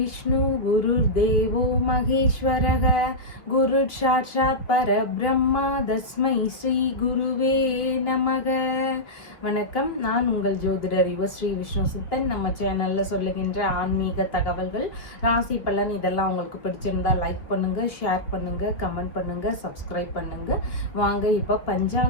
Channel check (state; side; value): late; right; 3.0 ms